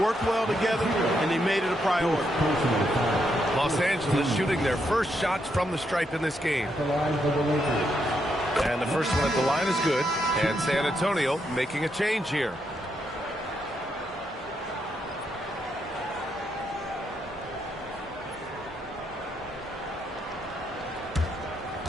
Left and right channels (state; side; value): normal; both; correlation 0.79